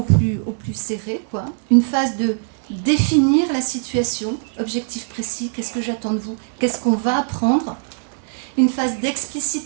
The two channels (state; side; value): silent; left; digital silence